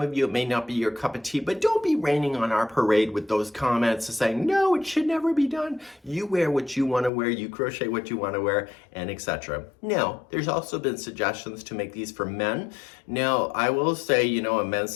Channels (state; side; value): drops out; right; at 7.1 s